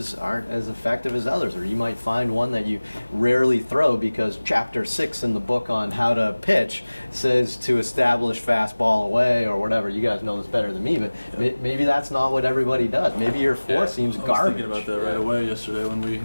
aren't as effective as others, or you might find one that you rarely throw because chapter 6 in the book on how to pitch says to establish fastball away or whatever. You guys know this better than me, but maybe that's not what everybody does. Maybe your 4 seems garbage. I was thinking about that right away yesterday when we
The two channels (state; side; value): inverted; both; correlation -1.00